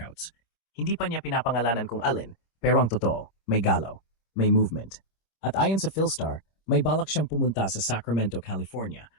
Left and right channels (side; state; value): right; late; 25 ms